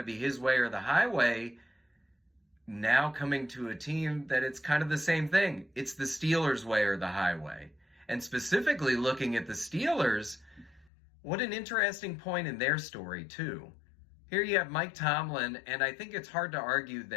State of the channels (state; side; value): drops out; right; at 10.9 s